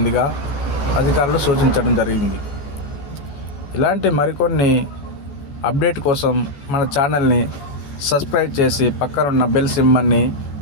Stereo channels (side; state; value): right; late; 14 ms